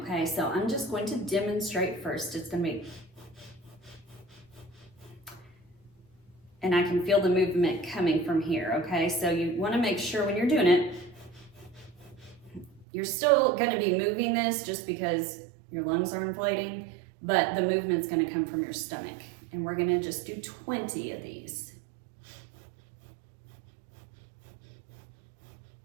So I'm just going to demonstrate first. It's gonna be, and I can feel the movement coming from here, okay? So you wanna make sure when you're doing it, you're still gonna be moving this just because your lungs are inflating, but the movement's gonna come from your stomach. And we're gonna just do 20 of these.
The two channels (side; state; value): left; drops out; at 12.9 s